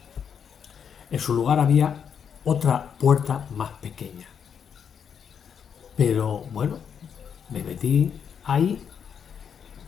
En su lugar había otra puerta más pequeña. Pero bueno, me metí ahí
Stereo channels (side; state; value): right; quieter; 7.5 dB